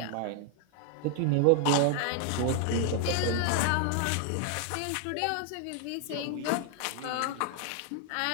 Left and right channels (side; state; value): both; different; correlation 0.00